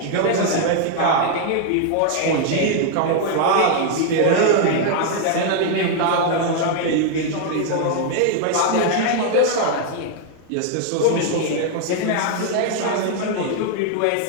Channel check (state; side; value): different; both; correlation 0.00